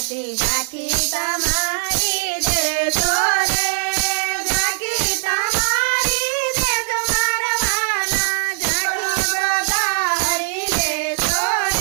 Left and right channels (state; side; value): silent; left; digital silence